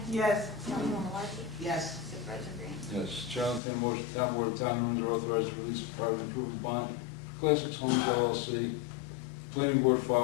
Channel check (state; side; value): drops out; right; at 3.6 s